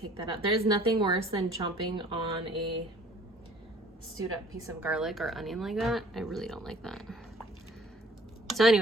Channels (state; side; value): normal; both; correlation 0.53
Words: that out. There's nothing worse than chomping on a stewed up piece of garlic or onion like that. I really don't like that. So